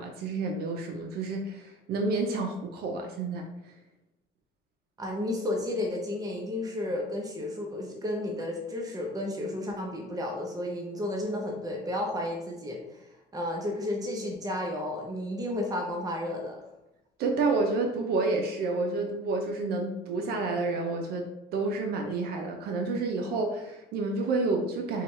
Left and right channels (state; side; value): normal; both; correlation 0.39